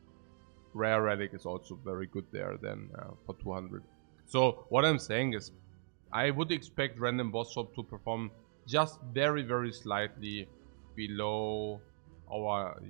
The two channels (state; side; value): silent; left; digital silence